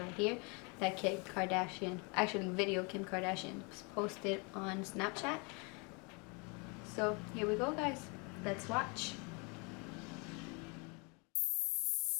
here that Kim Kardashian, actually video Kim Kardashian posted on Snapchat. So here we go guys, let's watch.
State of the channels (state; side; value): quieter; right; 32.0 dB